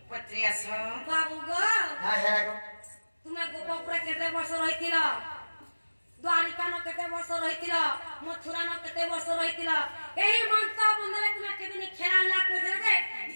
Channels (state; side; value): inverted; both; correlation -1.00